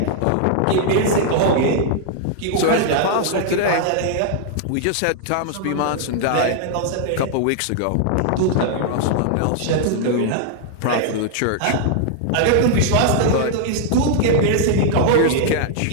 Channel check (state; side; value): different; both; correlation -0.01